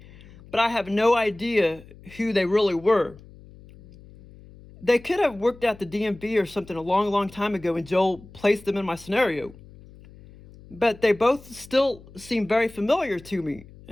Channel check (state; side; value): noise; left; hum, 21 dB below the sound